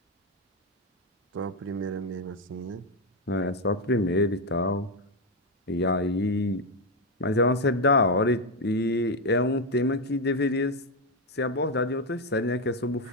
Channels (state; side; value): normal; both; correlation 0.06